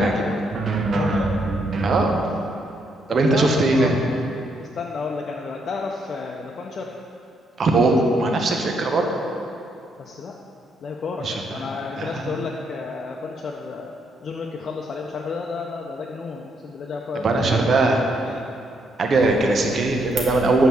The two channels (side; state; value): both; normal; correlation 0.75